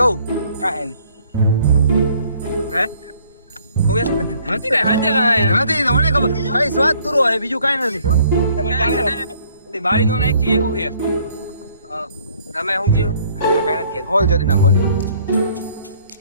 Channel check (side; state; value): both; inverted; correlation -0.61